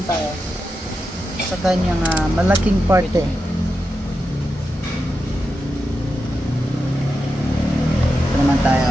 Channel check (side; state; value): both; normal; correlation 0.89